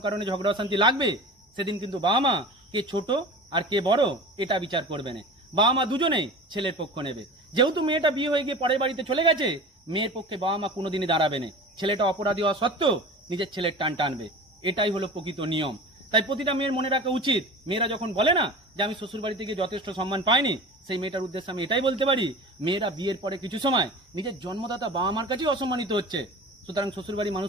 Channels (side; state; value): both; normal; correlation 0.35